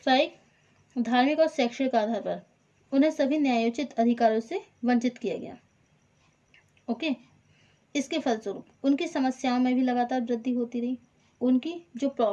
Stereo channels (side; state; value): both; identical; correlation 1.00